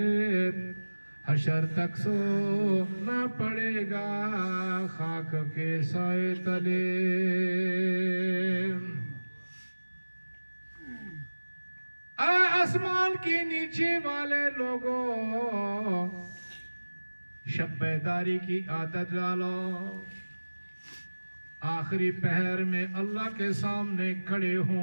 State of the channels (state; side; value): inverted; both; correlation -1.00